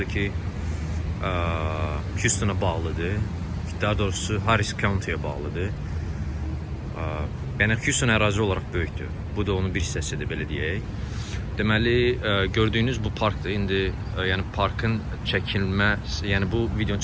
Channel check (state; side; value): identical; both; correlation 1.00